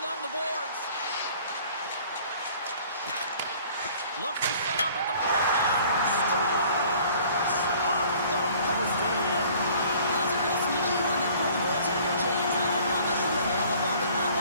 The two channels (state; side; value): inverted; both; correlation -0.53